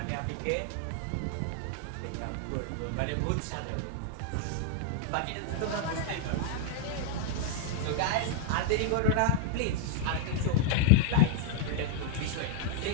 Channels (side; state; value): both; different; correlation 0.00